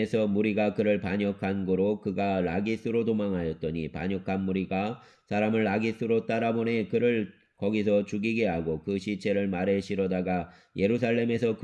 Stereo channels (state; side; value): identical; both; correlation 1.00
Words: 무리가 그를 반역한 고로 그가 라기스로 도망하였더니 반역한 무리가 사람을 라기스로 따라보내 그를 거기서 죽이게 하고 그 시체를 말에 실어다가 예루살렘에서